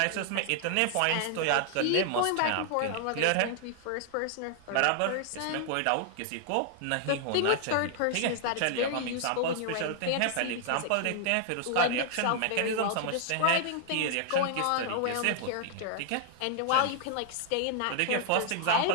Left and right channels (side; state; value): both; different; correlation 0.00